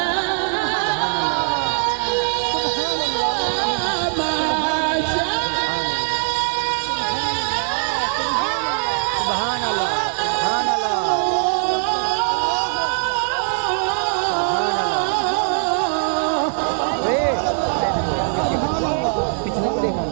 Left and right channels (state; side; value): silent; left; digital silence